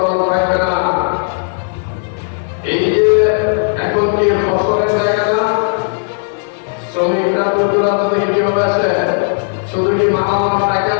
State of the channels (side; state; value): right; silent; digital silence